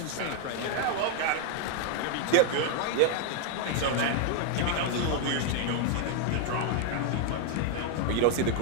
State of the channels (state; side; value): different; both; correlation 0.01